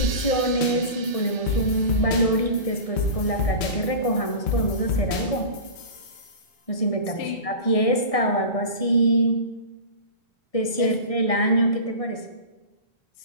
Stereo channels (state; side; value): late; right; 1.6 ms